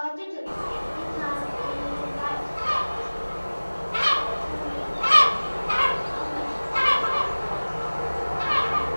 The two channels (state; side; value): inverted; both; correlation -1.00